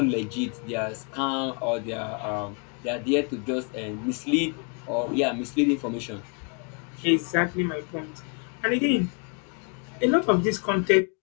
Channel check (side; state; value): right; quieter; 37.3 dB